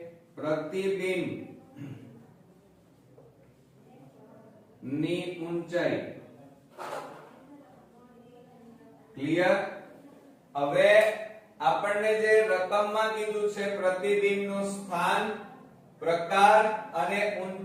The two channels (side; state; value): both; identical; correlation 1.00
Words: પ્રતિબિંબ ની ઊંચાઈ. ક્લિયર? હવે આપણને જે રકમમાં કીધું છે પ્રતિબિંબનું સ્થાન, પ્રકાર અને